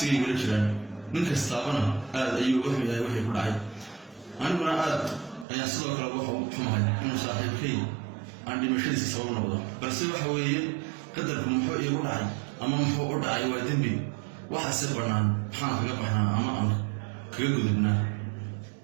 igala jiraan ninkaas taabana aad ayuu u xumahay wixii ku dhacay aniguna aad ayaan sidoo kale wax u xumahay inuu saaxiibkay aan dhimashadiisa sabab noqdo balse waxa weeye qadarku muxuu iigu dhacay ama muxuu u dhacay waa dembi waxa si banaan maxaan kaga baxnaa ama aan kaga gudubnaa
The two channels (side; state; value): left; drops out; at 5.5 s